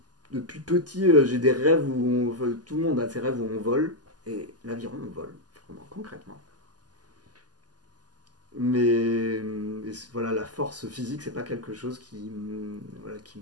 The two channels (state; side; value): late; left; 0.69 ms